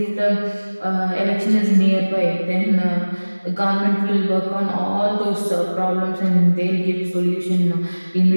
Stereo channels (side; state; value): both; inverted; correlation -1.00